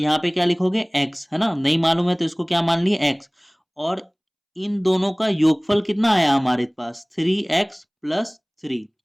पे क्या लिखोगे x, है ना। नहीं मालूम है तो इसको क्या मान लिए x, और इन दोनों का योगफल कितना आया हमारे पास 3x+3, 3,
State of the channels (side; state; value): both; identical; correlation 1.00